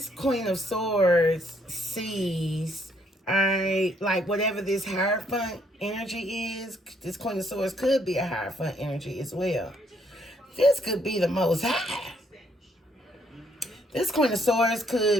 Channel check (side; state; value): both; normal; correlation 0.70